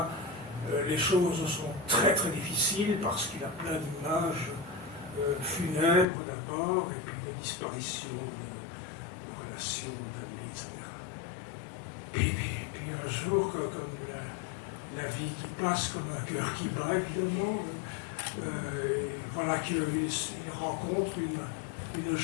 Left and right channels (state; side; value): drops out; right; at 6.1 s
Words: les choses sont très très difficiles parce qu'il a plein d'images funèbres d'abord, et puis de disparitions, de relations, d'amis, etc. Puis un jour, comme la vie qui passe, comme un cœur qui bat, évidemment, voilà qu'il rencontre une